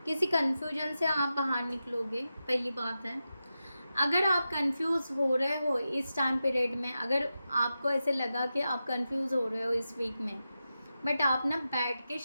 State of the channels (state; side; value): inverted; both; correlation -0.91